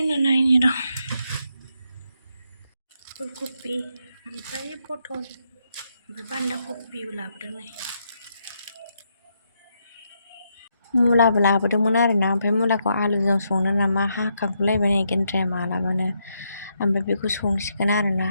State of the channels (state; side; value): inverted; both; correlation -0.79